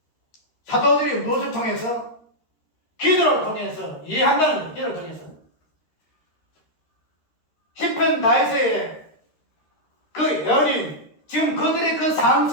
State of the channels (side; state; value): right; late; 13 ms